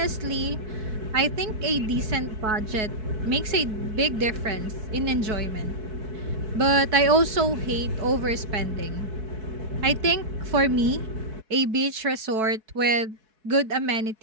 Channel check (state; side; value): late; left; 4.6 ms